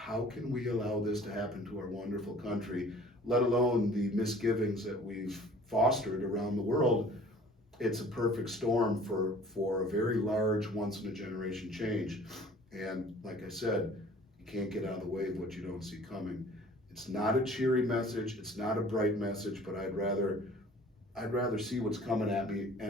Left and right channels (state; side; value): normal; both; correlation 0.49